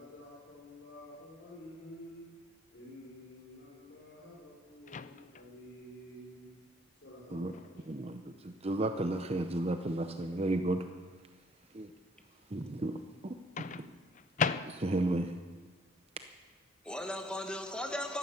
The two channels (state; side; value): normal; both; correlation 0.61